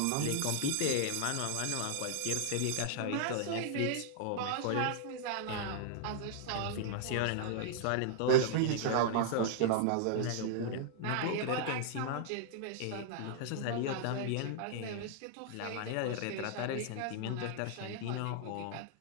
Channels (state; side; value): different; both; correlation 0.00